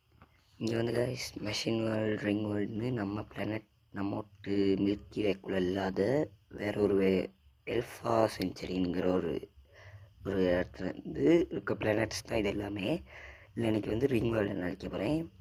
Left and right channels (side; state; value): both; identical; correlation 1.00